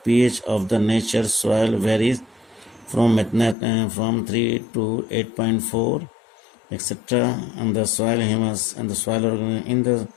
of the nature soil varies from 3 to 8.4 etc. and the soil humus and the soil in the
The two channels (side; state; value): right; drops out; at 3.6 s